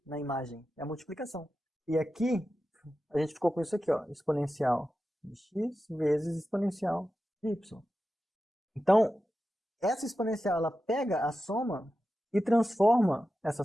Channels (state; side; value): normal; both; correlation 0.92